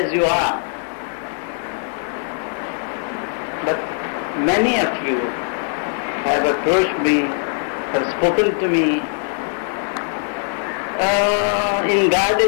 you are. But many of you have approached me, have spoken to me in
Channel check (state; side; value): silent; right; 57 dB below the other